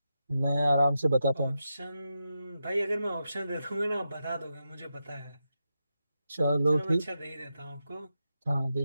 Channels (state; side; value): inverted; both; correlation -0.87